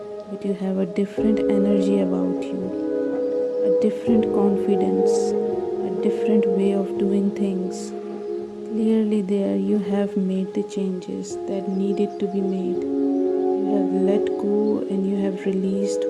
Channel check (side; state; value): both; identical; correlation 1.00